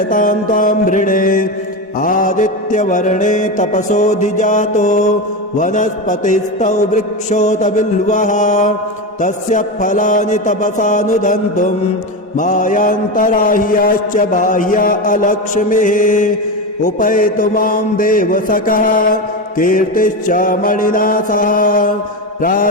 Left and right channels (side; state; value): both; normal; correlation 0.18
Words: तां त्वां वृणे। आदित्यवर्णे तपसोऽधिजातो वनस्पतिस्तौ वृक्षोत बिल्वः तस्य फलानि तपसानुदन्तुं मायान्तराह्याश्च बाह्या अलक्ष्मीः। उपैतु मां देवसखः कीर्तिश्च मणिना सह